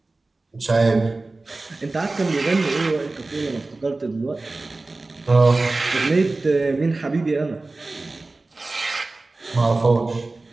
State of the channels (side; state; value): left; quieter; 3.3 dB